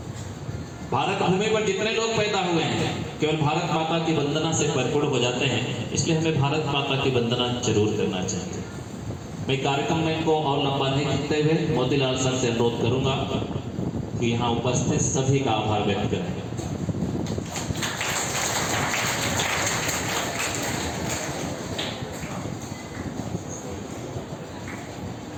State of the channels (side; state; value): both; identical; correlation 1.00